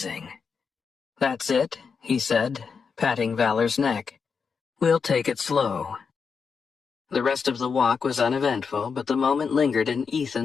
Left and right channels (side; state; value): right; quieter; 5.7 dB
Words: "That's it," he said, patting Valor's neck. "We'll take it slow." The rest of the walk was uneventful, but the moment lingered in